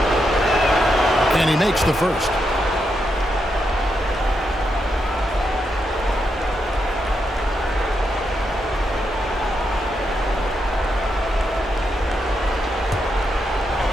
And he makes the first.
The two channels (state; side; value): normal; both; correlation 0.83